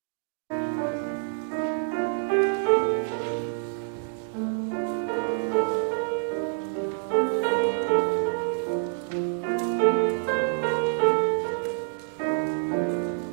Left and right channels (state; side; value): silent; left; digital silence